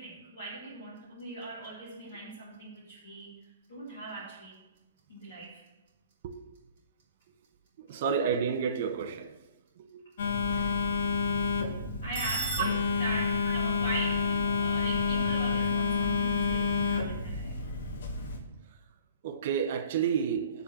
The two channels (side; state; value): both; inverted; correlation -0.57